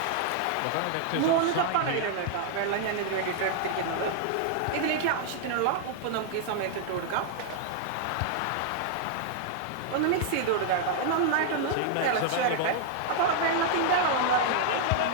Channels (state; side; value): different; both; correlation -0.01